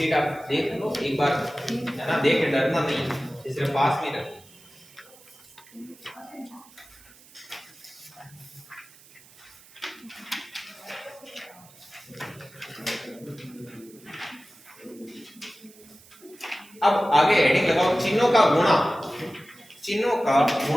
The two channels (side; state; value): right; noise; hiss, 24 dB below the sound